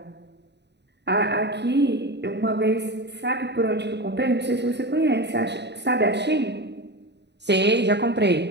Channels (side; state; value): left; late; 0.50 ms